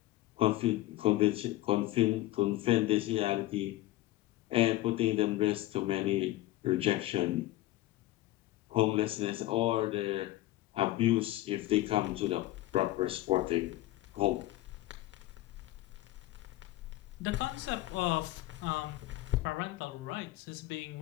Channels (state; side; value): quieter; right; 16.4 dB